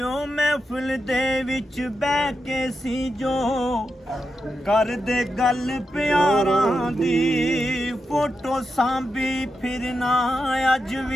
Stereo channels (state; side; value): normal; both; correlation 0.87